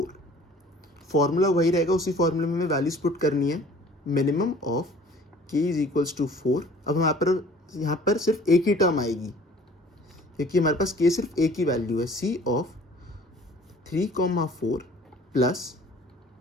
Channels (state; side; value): normal; both; correlation 0.50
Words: फॉर्मूला वही रहेगा, उसी फॉर्मूले में हमें वैल्यूज पुट करनी है। Minimum of k is equals to 4। अब यहाँ पर सिर्फ एक ही टर्म आएगी क्योंकि हमारे पास के सिर्फ एक ही वैल्यू है, सी ऑफ 3, 4 प्लस